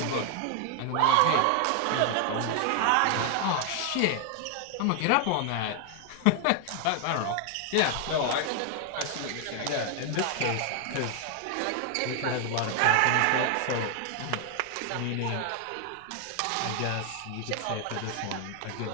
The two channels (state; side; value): different; both; correlation 0.00